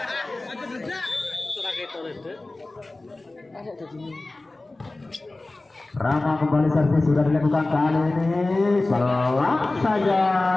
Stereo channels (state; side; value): quieter; right; 3.0 dB